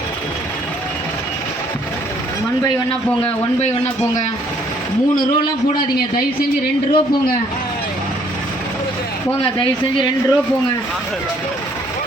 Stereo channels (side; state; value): both; normal; correlation 0.63